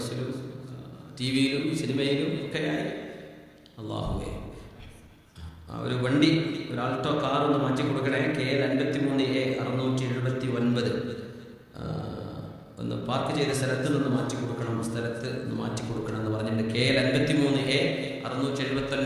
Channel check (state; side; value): identical; both; correlation 1.00